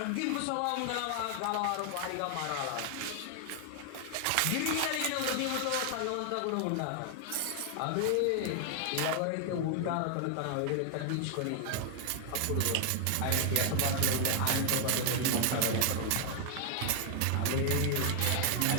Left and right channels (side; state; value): both; different; correlation 0.00